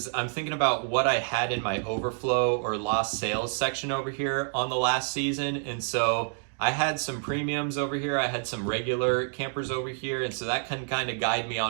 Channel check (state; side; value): silent; left; 59 dB below the other